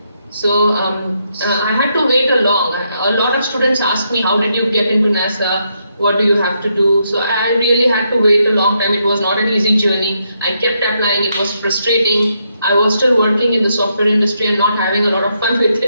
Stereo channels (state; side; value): inverted; both; correlation -0.79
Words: So I had to wait a lot of students asked me, how did you get into NASA? What do you have to do? So I really had to wait a long time. It was not an easy journey. I kept applying. It was frustrating. I was still working in the software industry and not having a lot of fun with